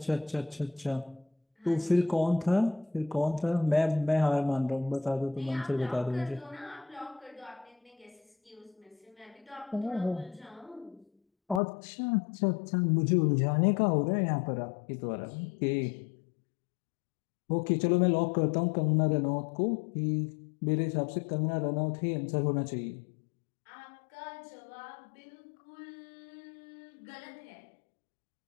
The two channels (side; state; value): right; drops out; at 11.6 s